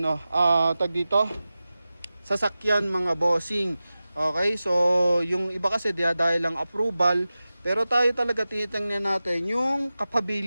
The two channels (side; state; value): both; inverted; correlation -0.95